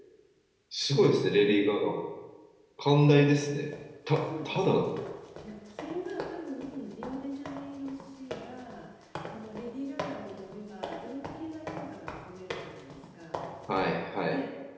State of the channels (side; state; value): both; identical; correlation 1.00